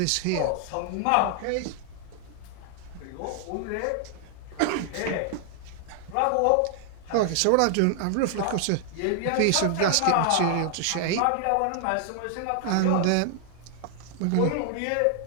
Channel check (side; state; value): both; different; correlation 0.00